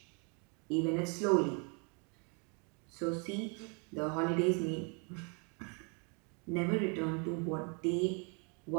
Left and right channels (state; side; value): quieter; left; 35.6 dB